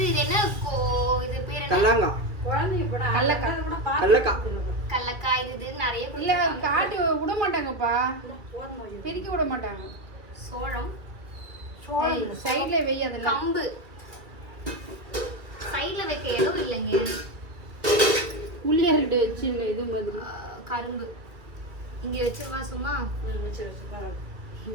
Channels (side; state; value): left; late; 2.3 ms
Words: இது என்ன இது பேர் என்ன? கல்லாங்கா. கல்லக்காய். இது நிறைய இல்ல காட்டு விட மாட்டாங்கப்பா. பெருக்கி விட மாட்டாங்க. சோளம். சைடுல வெய். அதெல்லாம் கம்பு. சைடுல வைக்க இடம் இல்லைங்க. உள்ளியார்கிட்ட வச்சிருங்க இது மாதிரி. கரும்பு இங்க வச்சிருவா சும்மா.